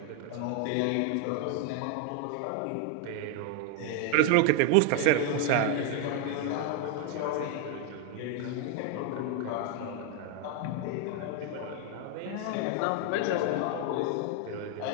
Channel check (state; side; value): different; both; correlation 0.01